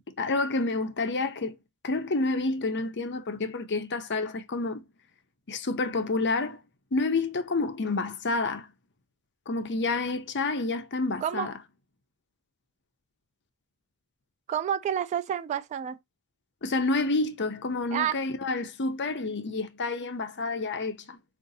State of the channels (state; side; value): normal; both; correlation 0.05